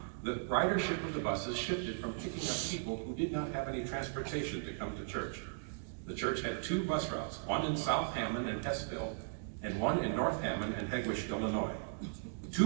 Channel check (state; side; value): silent; left; digital silence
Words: the ridership of the buses shifted from picking up people who did not have any transportation to come to church. The church had two bus routes, one in South Hammond and Hessville, and one in North Hammond and Hegewisch, Illinois.